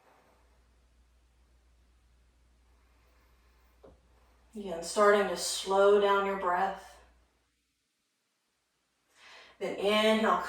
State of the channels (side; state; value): both; identical; correlation 1.00